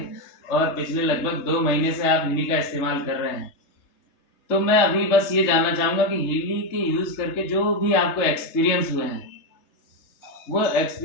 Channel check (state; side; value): late; right; 3.3 ms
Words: और पिछले लगभग 2 महीने से आप हिली का इस्तेमाल कर रहे हैं। तो मैं अभी बस ये जानना चाहूँगा कि हिली के यूज़ करके जो भी आपको एक्सपीरियंस हुए हैं, वो